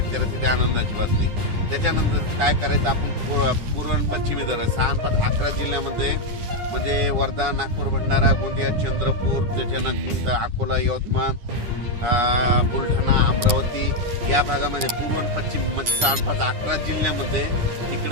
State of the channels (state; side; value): late; left; 9.8 ms